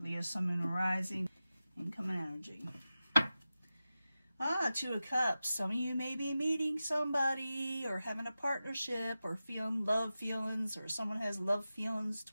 Leo, Sun, Moon, and Rising. Incoming energy. Two of Cups. Some of you may be meeting somebody or having a partnership or feeling love feelings, or someone has love feelings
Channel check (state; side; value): inverted; both; correlation -0.94